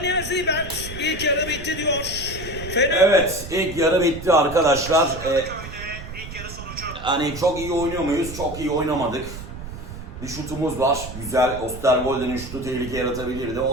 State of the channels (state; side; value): noise; right; rumble, 11 dB below the sound